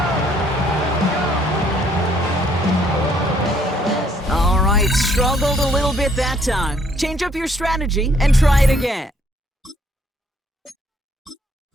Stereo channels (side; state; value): both; normal; correlation 0.66